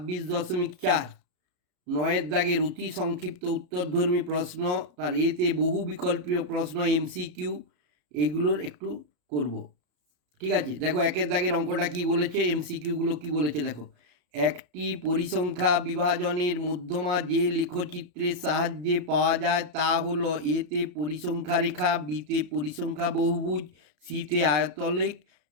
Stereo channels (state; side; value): late; left; 33 ms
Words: নয়ের দাগের অতি সংক্ষিপ্ত উত্তরধর্মী প্রশ্ন, তার এতে বহু বিকল্পীয় প্রশ্ন, এমসিকিউ, এগুলোর একটু করব। ঠিক আছে, দেখো একের দাগের অঙ্কটা কি বলেছে, এমসিকিউগুলো কি বলেছে দেখো। একটি পরিসংখ্যা বিভাজনের মধ্যমা যে লেখচিত্রের সাহায্যে পাওয়া যায় তা হলো এতে পরিসংখ্যা রেখা, বিতে পরিসংখ্যা বহুভুজ, সিতে আয়তলেখ,